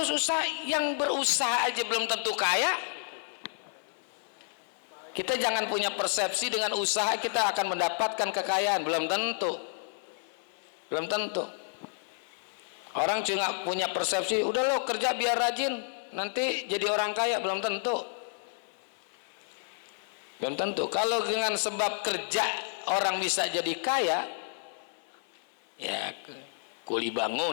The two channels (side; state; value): right; silent; 57 dB below the other